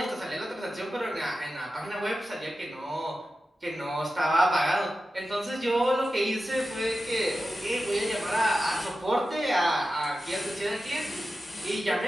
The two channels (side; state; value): both; normal; correlation 0.93